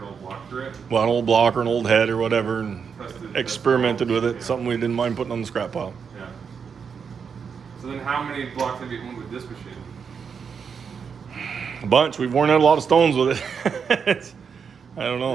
old block through it. Well, an old block or an old head or whatever, and Tested experimented with it. yeah. Something we didn't mind putting on the scrap pile. Yeah. So then how many blocks have you honed with this machine? A bunch. We've worn out a lot of stones with it. I don't know.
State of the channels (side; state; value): left; quieter; 6.4 dB